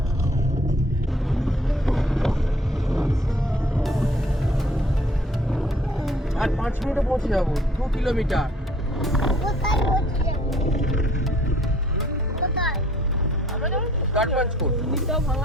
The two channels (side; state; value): both; normal; correlation 0.58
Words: আর 5 মিনিটে পৌঁছে যাবো, 2 কিলোমিটার। গড়পঞ্চকোট